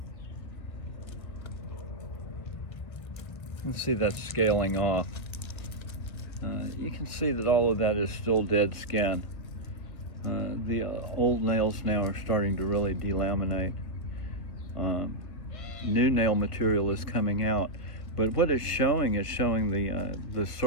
You can see that's scaling off. You can see that all of that is still dead skin. The old nails now are starting to really delaminate. New nail material is coming out, but what it's showing is showing the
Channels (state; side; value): late; right; 1.2 ms